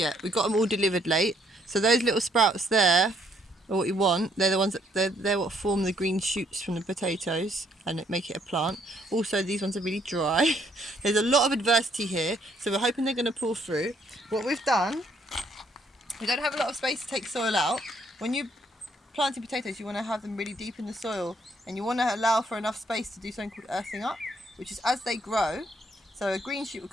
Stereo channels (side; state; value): both; normal; correlation 0.68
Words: We got them all delivered late. So those little sprouts there are what you want. They're the ones that they're what form the green shoots from the potatoes and make it a plant. Also, these ones are really dry. There's a lot of adversity here, so we're hoping they're going to pull through. What we've done, we don't have a lot of space to take soil out. When you're planting potatoes, you want to have them really deep in the soil, and you want to allow for enough space to do something called earthing up, which is as they grow. So a green shoot will